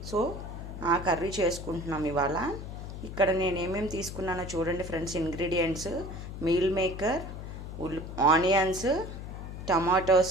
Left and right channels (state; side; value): noise; left; hum, 9 dB below the sound